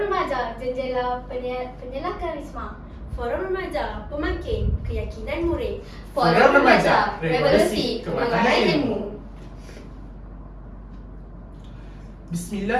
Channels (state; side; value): identical; both; correlation 1.00